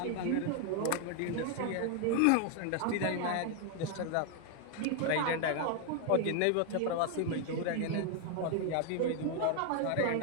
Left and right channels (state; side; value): different; both; correlation 0.00